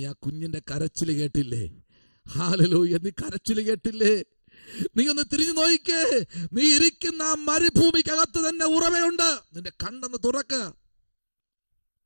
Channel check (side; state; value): both; inverted; correlation -1.00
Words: ആ കുഞ്ഞിന്റെ കരച്ചിൽ കേട്ടില്ലേ? ഹല്ലേലൂയ. നീ കരച്ചിൽ കേട്ടില്ലേ? നീ ഒന്ന് തിരിഞ്ഞു നോയിക്കേ. നീ ഇരിക്കുന്ന ആ മരുഭൂമിക്കകത്ത് തന്നെ ഉറവയുണ്ട്. നിന്റെ കണ്ണൊന്ന് തുറക്ക.